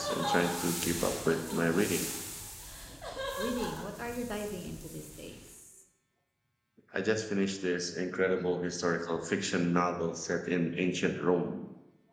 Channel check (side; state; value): both; identical; correlation 1.00